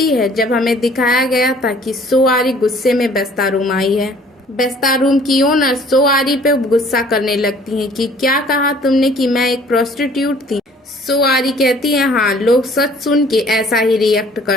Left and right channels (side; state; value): both; normal; correlation 0.55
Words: है जब हमें दिखाया गया था कि सोआरी गुस्से में बेस्ता रूम आई है। बेस्ता रूम की ओनर सोआरी पे गुस्सा करने लगती है कि क्या कहा तुमने कि मैं एक प्रोस्टिट्यूट थी। सोआरी कहती है हाँ, लोग सच सुन के ऐसा ही रिएक्ट